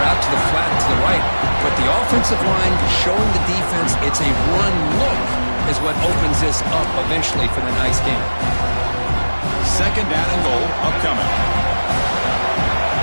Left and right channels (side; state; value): both; inverted; correlation -1.00